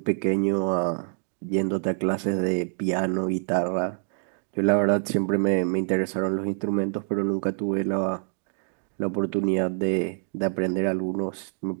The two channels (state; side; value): silent; left; digital silence